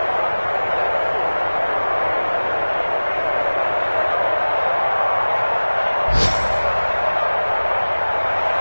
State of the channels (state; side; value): inverted; both; correlation -1.00